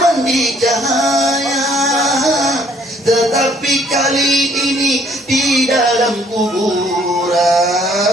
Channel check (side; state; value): both; normal; correlation 0.62